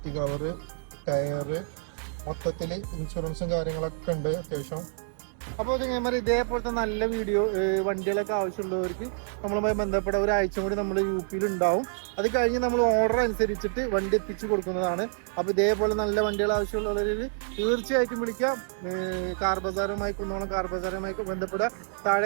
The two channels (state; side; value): silent; left; digital silence